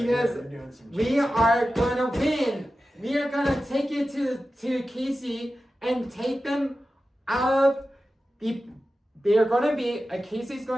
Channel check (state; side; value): normal; both; correlation 0.93